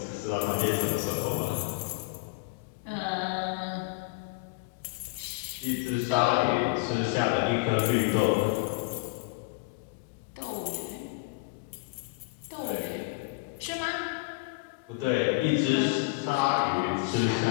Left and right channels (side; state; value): right; quieter; 25.9 dB